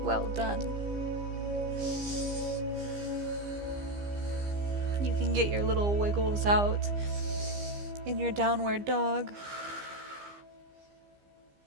Well done. You can get your little wiggles out in your downward dog.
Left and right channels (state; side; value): late; left; 15 ms